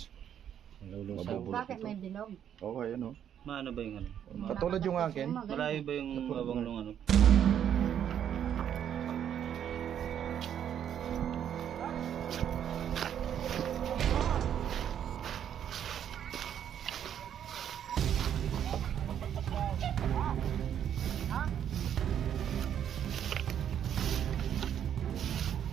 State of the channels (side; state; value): left; quieter; 9.5 dB